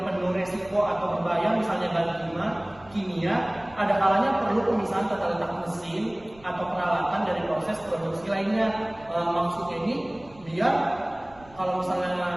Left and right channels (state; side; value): noise; right; rumble, 25 dB below the sound